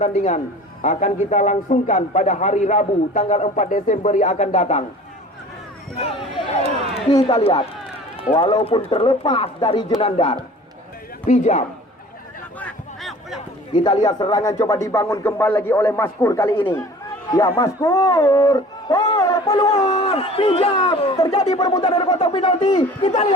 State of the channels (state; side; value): normal; both; correlation 0.44